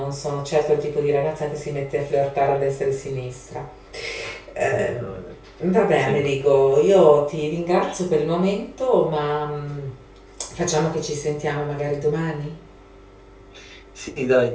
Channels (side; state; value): both; identical; correlation 1.00